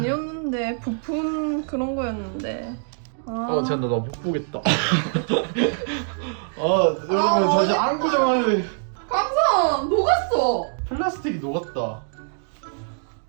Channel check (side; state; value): left; silent; digital silence